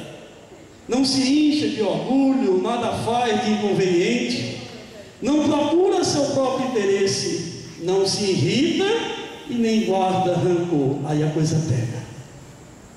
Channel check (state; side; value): identical; both; correlation 1.00